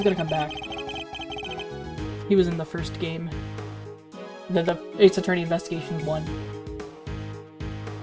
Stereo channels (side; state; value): both; identical; correlation 1.00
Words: gonna come back. He was in the first game. The Ace Attorney Investigations 1.